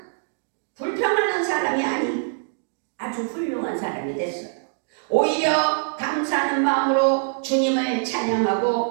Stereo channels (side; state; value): left; silent; digital silence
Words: 불평하는 사람이 아니 아주 훌륭한 사람이 됐어요. 오히려 감사하는 마음으로 주님을